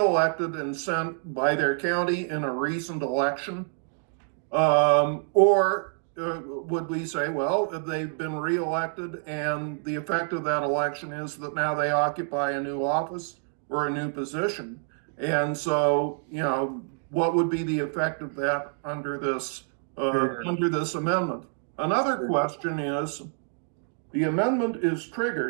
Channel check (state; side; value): silent; left; 60 dB below the other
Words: and sent by their county in a recent election? Or would we say, well, they've been re-elected and the effect of that election is that now they occupy a new office or a new position? And so, what would be the effect of that under this amendment? Another question is, the amendment is